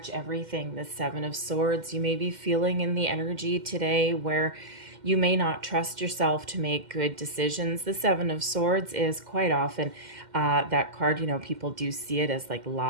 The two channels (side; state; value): left; late; 2.1 ms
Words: everything. The Seven of Swords, you may be feeling in the energy today where you may not trust yourself to make good decisions. The Seven of Swords is quite often that card, you know, people do see it as like